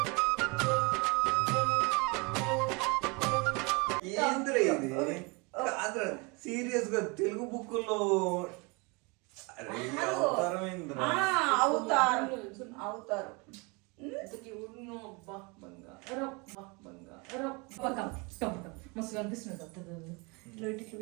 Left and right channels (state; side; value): quieter; left; 29.2 dB